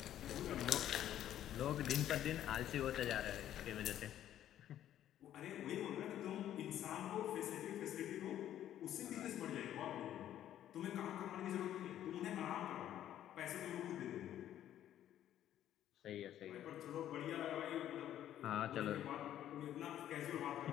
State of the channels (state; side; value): quieter; right; 11.6 dB